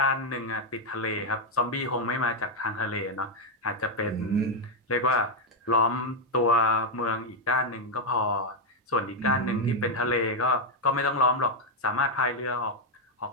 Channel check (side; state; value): both; normal; correlation 0.01